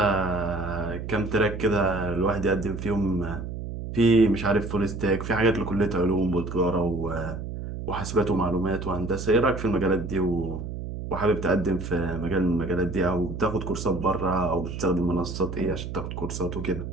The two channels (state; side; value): noise; right; hum, 7 dB below the sound